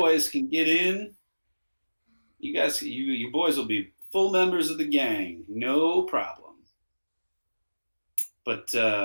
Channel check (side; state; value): both; inverted; correlation -1.00